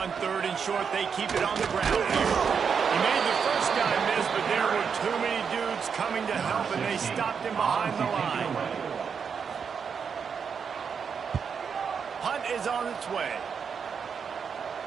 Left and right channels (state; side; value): quieter; left; 6.5 dB